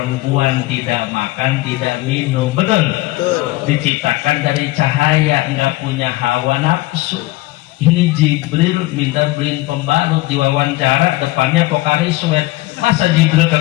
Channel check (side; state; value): right; quieter; 19.5 dB